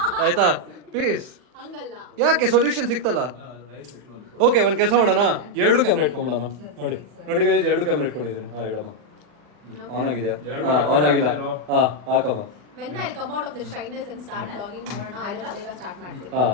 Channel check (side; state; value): left; late; 40 ms